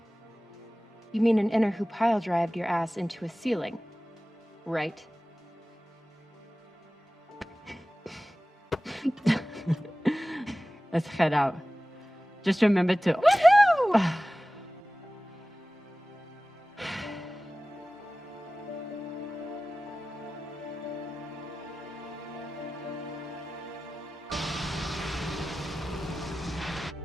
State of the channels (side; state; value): both; normal; correlation 0.97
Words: You mean an inner who pile-drived your ass into a ceiling, right? Let's head out. Just remember to... Woohoo!